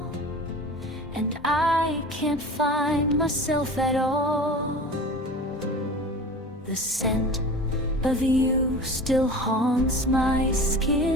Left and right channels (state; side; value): normal; both; correlation 0.36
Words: and I can't find myself at all. The scent of you still haunts my